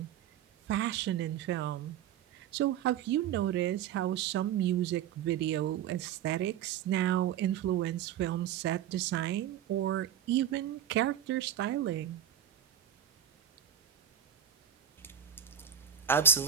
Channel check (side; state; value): left; quieter; 9.6 dB